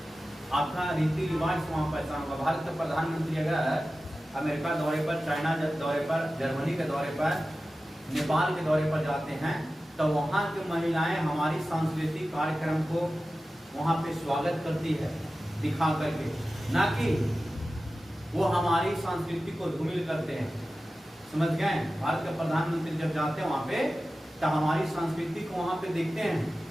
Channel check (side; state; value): both; normal; correlation 0.95